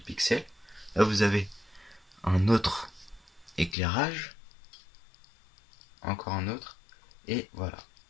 pixels. Là vous avez un autre éclairage, encore un autre, et voilà.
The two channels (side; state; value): right; drops out; at 3.8 s